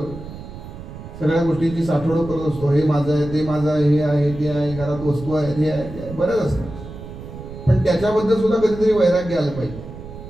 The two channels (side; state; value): right; noise; rumble, 13 dB below the sound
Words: सगळ्या गोष्टींची साठवणूक करत असतो. हे माझं आहे, ते माझं आहे, हे आहे, ते आहे, घरात वस्तू आहेत, हे आहे, ते आहे, बरंच असतं. पण त्याच्याबद्दल सुद्धा कधीतरी वैराग्य आलं पाहिजे.